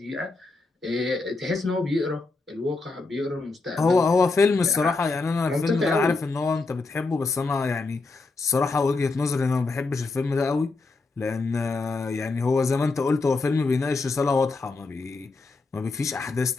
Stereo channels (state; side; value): quieter; right; 3.7 dB